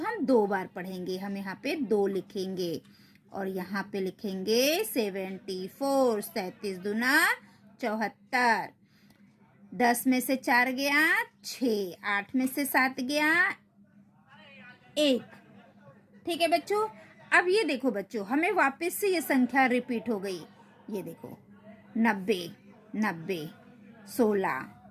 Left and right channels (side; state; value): both; identical; correlation 1.00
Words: 2 बार पढ़ेंगे। हम यहाँ पे 2 लिखेंगे और यहाँ पे लिखेंगे 74, 37 दूना 74, 10 में से 4 गया 6, 8 में से 7 गया 1। ठीक है बच्चों। अब ये देखो बच्चों, हमें वापस से ये संख्या रिपीट हो गई। ये देखो 90, 90, 16,